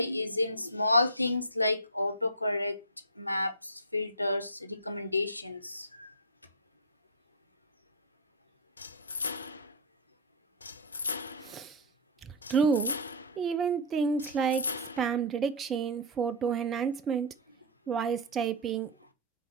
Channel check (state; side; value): normal; both; correlation -0.11